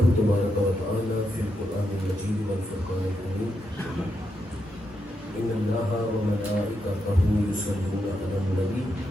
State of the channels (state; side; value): normal; both; correlation 0.83